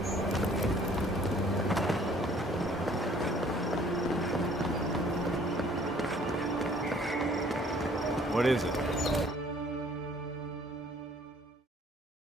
What is it?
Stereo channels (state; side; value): normal; both; correlation 0.57